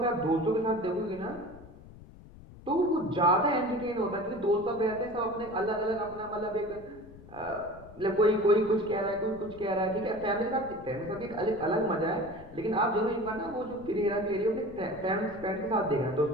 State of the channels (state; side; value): noise; left; rumble, 19 dB below the sound